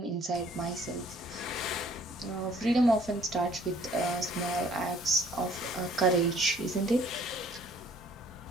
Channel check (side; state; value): both; normal; correlation 0.58